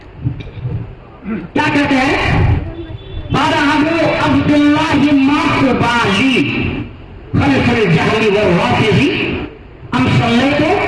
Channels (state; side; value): identical; both; correlation 1.00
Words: کیا کہتے ہیں، قال ابو عبد اللہ ماخبالی خلف الجہل والرافض ام صلیت